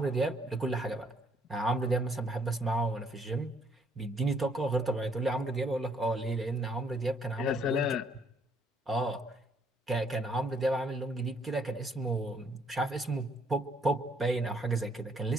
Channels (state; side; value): normal; both; correlation 0.67